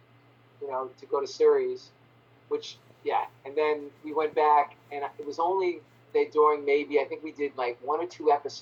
to go to series, and then we went back, and it was only during maybe I think we did like 1 or 2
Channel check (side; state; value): both; identical; correlation 1.00